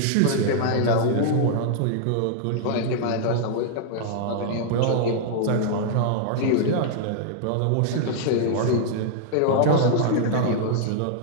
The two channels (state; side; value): different; both; correlation -0.01